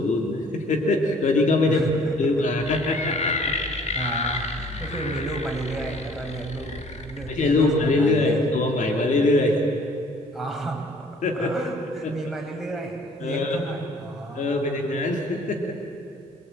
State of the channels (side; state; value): both; normal; correlation 0.55